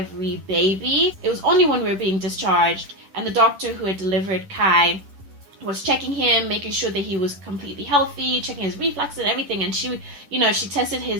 baby. It was only when we were being discharged and the doctor who had delivered Kai was checking him, making sure that he was completely healthy, checking his reflux and everything. And she tested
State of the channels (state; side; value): late; left; 10 ms